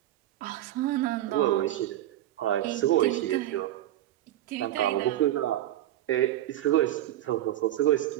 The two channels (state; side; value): quieter; left; 13.4 dB